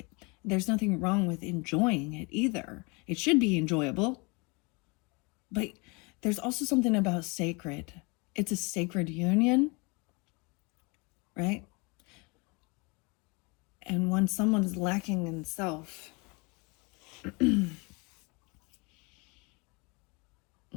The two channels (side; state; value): right; quieter; 29.2 dB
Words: there's nothing wrong with enjoying it either. It should be enjoyable. But there's also something about sacred. It's a sacred union, right? And when someone's lacking in self,